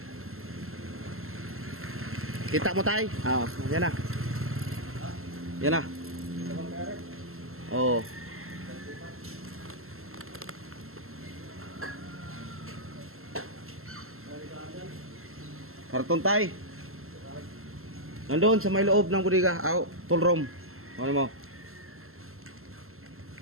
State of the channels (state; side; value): late; left; 0.62 ms